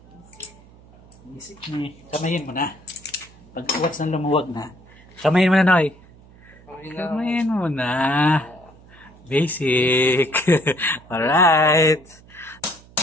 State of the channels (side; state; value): right; noise; hum, 25 dB below the sound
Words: Basic ni. Kamayin mo na. Pag once na lumuwag na. Kamayin mo na, Noy. Kamayin mo na. Basic. Alright.